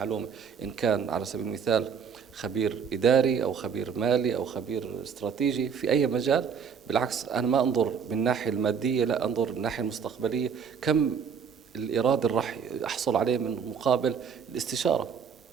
إن كان على سبيل المثال خبير إداري أو خبير مالي أو خبير استراتيجي في أي مجال. بالعكس أنا ما أنظر من الناحية المادية، لا أنظر من الناحية المستقبلية، كم الإيراد اللي راح أحصل عليه من مقابل الاستشارة،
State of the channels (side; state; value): left; quieter; 6.9 dB